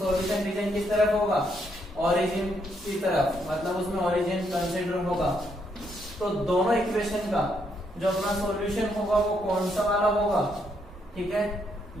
रीजन किस तरफ होगा, ओरिजिन की तरफ, मतलब उसमें ओरिजिन कंसीडर होगा। तो दोनों इक्वेशन का जो अपना सॉल्यूशन होगा वो कौन सा वाला होगा, ठीक है,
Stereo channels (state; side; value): normal; both; correlation 0.75